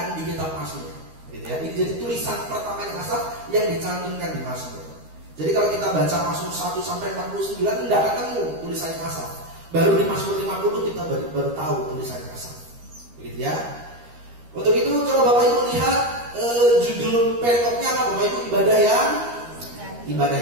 di kitab Mazmur. Gitu ya. Ini jadi tulisan pertamanya Asaf yang dicantumkan di Mazmur. Jadi kalau kita baca Mazmur 1 sampai 49 tidak ketemu tulisannya Asaf. Baru di Mazmur 50 kita baru tahu tulisannya Asaf. Begitu ya. Untuk itu coba Bapak Ibu lihat judul perikopnya apa Bapak Ibu? Ibadah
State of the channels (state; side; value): late; left; 13 ms